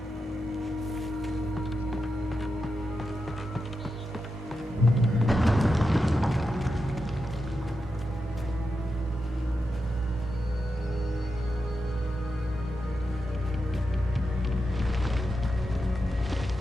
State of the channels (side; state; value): both; normal; correlation 0.88